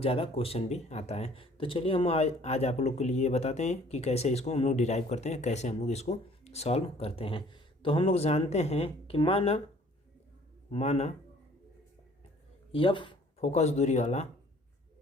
ज़्यादा क्वेश्चन भी आता है। तो चलिए हम आज आप लोग के लिए बताते हैं कि कैसे इसको हम लोग डिराइव करते हैं, कैसे हम लोग इसको सॉल्व करते हैं। तो हम लोग जानते हैं कि माना यह फोकस दूरी वाला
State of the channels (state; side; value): normal; both; correlation 0.55